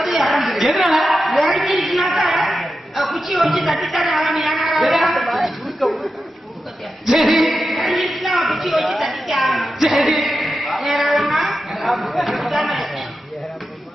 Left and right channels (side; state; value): both; normal; correlation 0.90